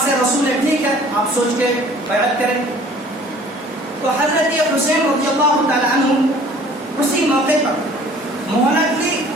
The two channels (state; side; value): normal; both; correlation 0.51